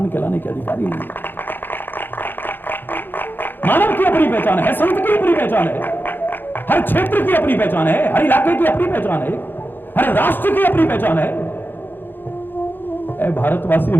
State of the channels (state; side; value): late; right; 0.096 ms